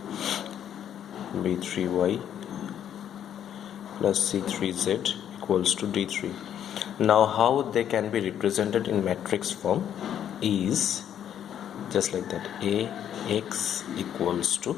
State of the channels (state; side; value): quieter; right; 9.8 dB